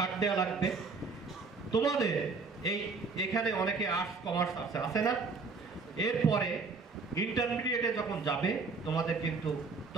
দেওয়া লাগবে। তোমাদের এই এখানে অনেকে আর্টস কমার্স আছে না, এরপরে ইন্টারমিডিয়েটে যখন যাবে তোমাদের কিন্তু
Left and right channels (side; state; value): left; quieter; 4.4 dB